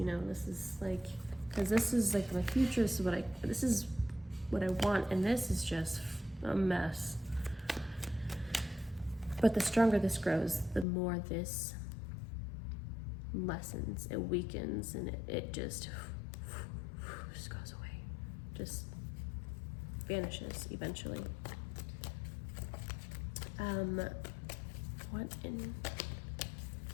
know, this is like, because this is like my future. This is what I want, and this is just a mess. But the stronger this grows, the more this lessens, it weakens, and it just goes away, just vanishes eventually. What in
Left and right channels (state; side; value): drops out; right; at 10.9 s